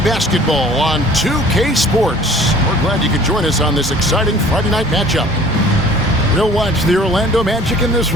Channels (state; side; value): normal; both; correlation 0.50